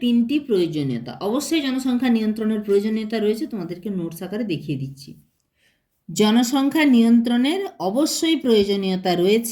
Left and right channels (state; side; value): identical; both; correlation 1.00